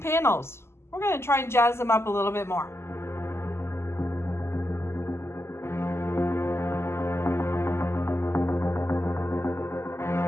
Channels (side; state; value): right; late; 0.12 ms